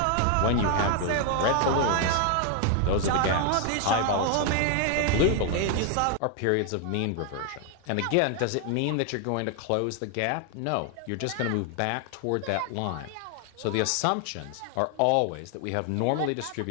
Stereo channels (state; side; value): different; both; correlation 0.01